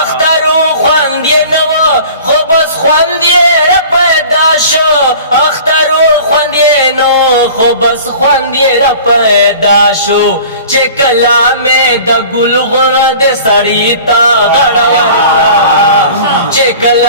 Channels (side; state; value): both; inverted; correlation -0.44